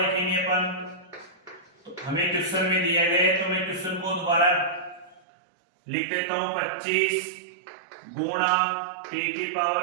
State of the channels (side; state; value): left; drops out; at 5.2 s